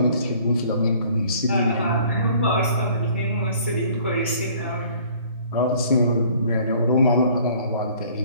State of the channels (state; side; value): inverted; both; correlation -0.55